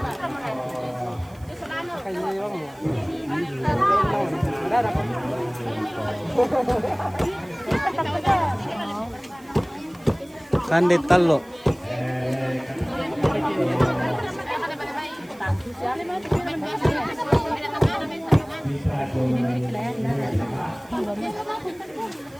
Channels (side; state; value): right; noise; hiss, 27 dB below the sound